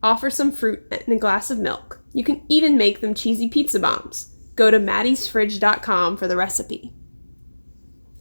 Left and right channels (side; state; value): both; inverted; correlation -1.00